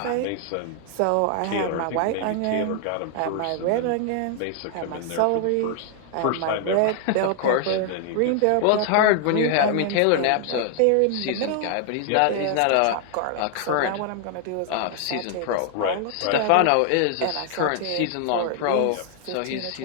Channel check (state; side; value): different; both; correlation 0.00